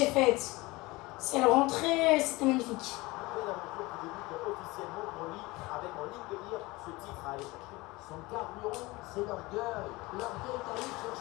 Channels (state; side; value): quieter; right; 21.9 dB